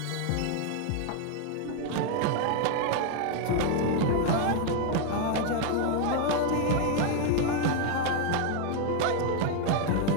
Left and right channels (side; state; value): both; different; correlation 0.01